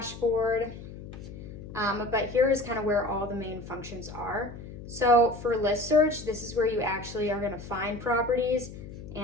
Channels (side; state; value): left; noise; hum, 13 dB below the sound